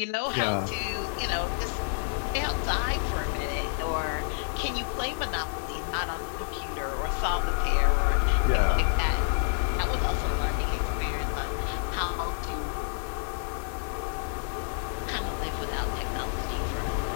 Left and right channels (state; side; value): silent; right; digital silence